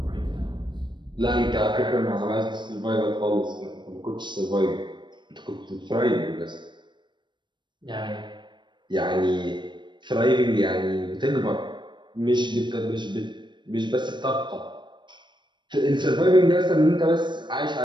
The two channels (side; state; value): left; late; 0.22 ms